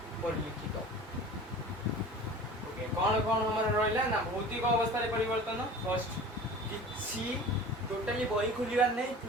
परिलिखित। ओके कौन कौन हमारे रहा ना भौतिक अवस्था परिवर्तन फर्स्ट किसी टोटाली बही खोलिबार नहीं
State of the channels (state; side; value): normal; both; correlation 0.40